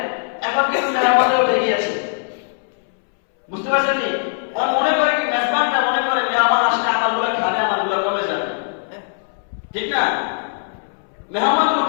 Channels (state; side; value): silent; right; 66 dB below the other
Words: এখন কিন্তু মেহমানদারি উঠে গিয়েছে। বুঝতে পারছেন নি? মনে করে কি মেজবানটা মনে করে মেহমান আসলে আমারগুলো খাবে, আমারগুলো কমে যাবে, ঠিক না? মেহমান